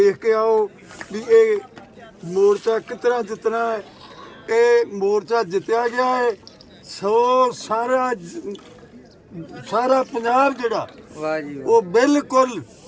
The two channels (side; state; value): both; identical; correlation 1.00